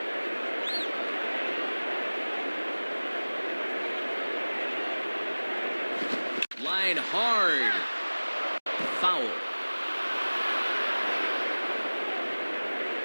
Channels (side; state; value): both; inverted; correlation -1.00